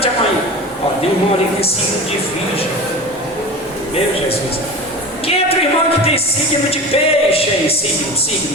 a mão aí. Ó, tem um irmão ali que tem signo de virgem. Meu Jesus. Quem é outro irmão que tem signo de peixe aí? Signo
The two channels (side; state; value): both; normal; correlation 0.32